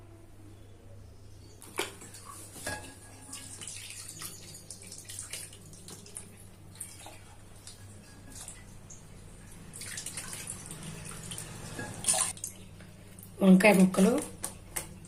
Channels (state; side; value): identical; both; correlation 1.00